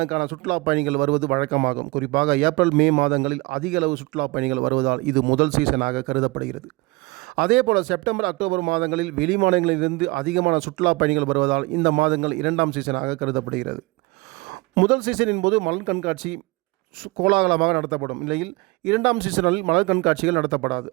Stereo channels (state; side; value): quieter; left; 23.5 dB